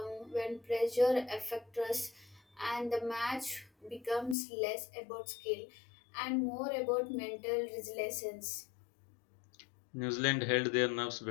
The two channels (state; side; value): drops out; right; at 4.4 s